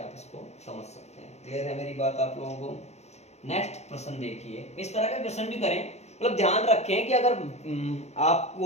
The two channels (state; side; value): late; right; 0.32 ms